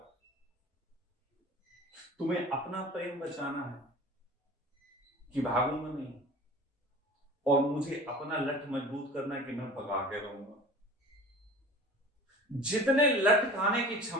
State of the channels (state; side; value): normal; both; correlation 0.40